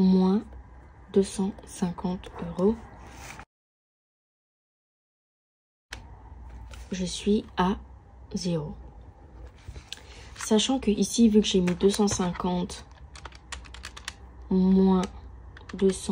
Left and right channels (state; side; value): identical; both; correlation 1.00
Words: 250 €. Je suis à 0. Sachant que ici, vu que j'ai mis 250 moins